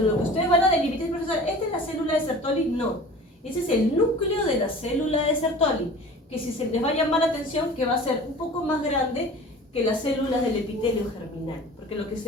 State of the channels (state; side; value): normal; both; correlation 0.41